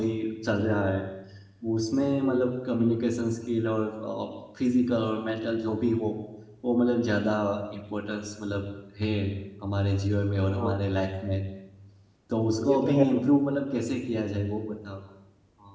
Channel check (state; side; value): identical; both; correlation 1.00